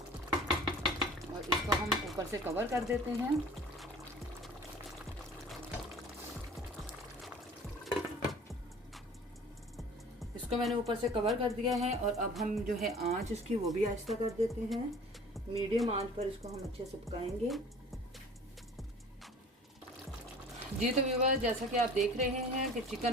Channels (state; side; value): normal; both; correlation 0.46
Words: और इसको हम ऊपर से कवर कर देते हैं। इसको मैंने ऊपर से कवर कर दिया है और अब हम जो है आंच इसकी वो भी आहिस्ता कर देते हैं। मीडियम आंच पर इसको हम अच्छे से पकाएंगे। जी तो व्यूअर्स, जैसा कि आप देख रहे हैं कि